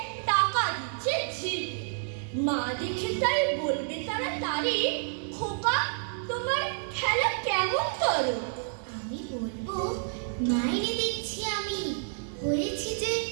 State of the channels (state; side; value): silent; left; 58 dB below the other